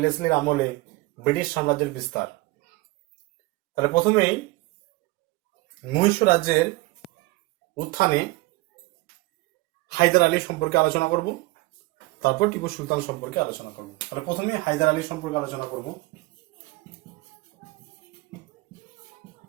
আমলে ব্রিটিশ সাম্রাজ্যের বিস্তার। তাহলে প্রথমেই মহীশূর রাজ্যের উত্থানে হায়দার আলী সম্পর্কে আলোচনা করব, তারপর টিপু সুলতান সম্পর্কে আলোচনা করব। তাহলে প্রথমেই হায়দার আলী সম্পর্কে আলোচনা করব।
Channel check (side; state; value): left; quieter; 21.4 dB